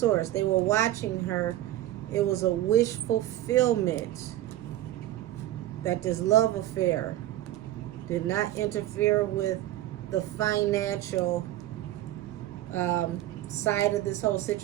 They were watching her. It was a wish fulfillment that this love affair did not interfere with the financial side of this whole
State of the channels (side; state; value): left; quieter; 14.4 dB